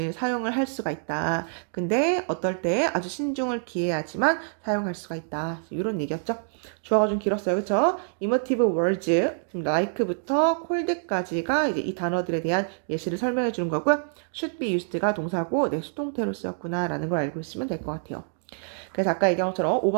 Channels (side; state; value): left; silent; digital silence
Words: 사용을 할 수가 있다. 근데 어떨 때 아주 신중을 기해야지만 사용할 수가 있다. 이런 얘기였죠. 주어가 좀 길었어요. 그쵸? emotive words, like부터 cold까지가 이제 이 단어들에 대한 예시를 설명해 주는 거고요. should be used가 동사고 내 수동태로 쓰였구나 라는 걸 알고 있으면 될 것 같아요. 그래서 아까 얘기한 것처럼